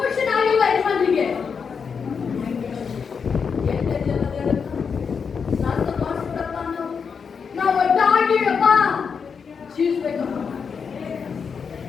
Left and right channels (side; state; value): right; quieter; 6.1 dB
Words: ಆಗಿಲ್ಲ ಯಜಮಾನಿಗೆ? ನಾವು ಒಟ್ಟಾಗಿಯಪ್ಪ ಜೀವಿಸ್ಬೇಕಪ್ಪ.